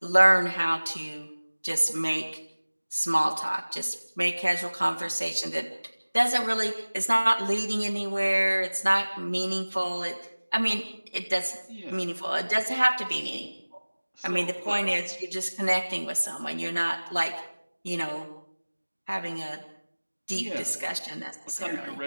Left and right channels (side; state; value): both; inverted; correlation -1.00